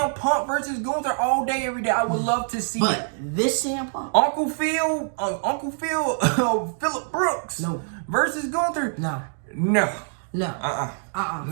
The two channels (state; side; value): silent; left; digital silence